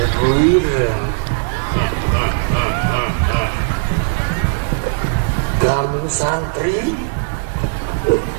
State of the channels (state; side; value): silent; left; 65 dB below the other